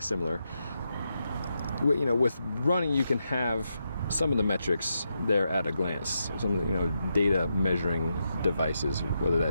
similar. With running, you can have some of the metrics there at a glance. Some of the data measuring devices, whether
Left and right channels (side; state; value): both; inverted; correlation -0.84